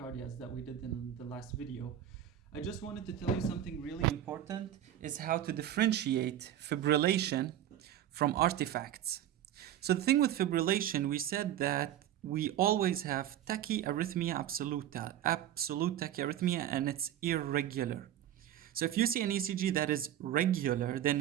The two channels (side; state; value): left; quieter; 11.5 dB